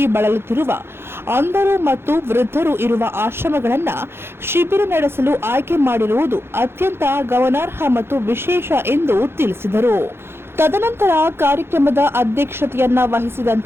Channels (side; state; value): left; late; 0.11 ms